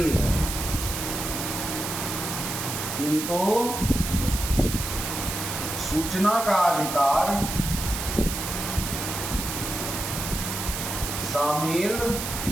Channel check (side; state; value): right; noise; hiss, 4 dB below the sound